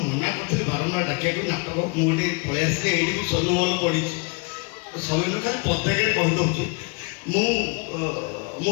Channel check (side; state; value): right; quieter; 31.4 dB